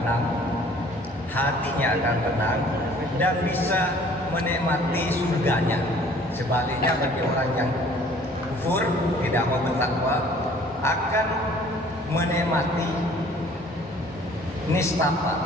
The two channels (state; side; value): normal; both; correlation 0.54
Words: tenang, dan bisa menikmati surganya. Sebaliknya bagi orang yang kufur, tidak mau bertakwa, akan menikmati nistapa,